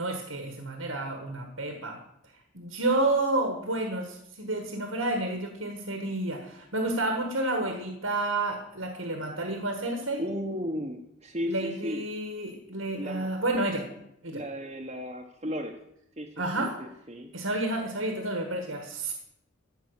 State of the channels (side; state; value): both; normal; correlation -0.01